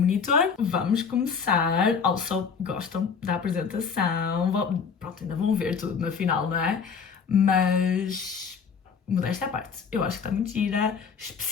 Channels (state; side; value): quieter; right; 6.1 dB